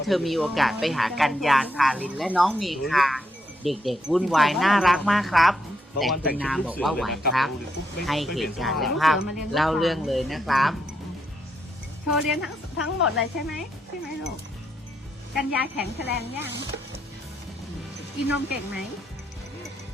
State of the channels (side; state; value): both; normal; correlation 0.79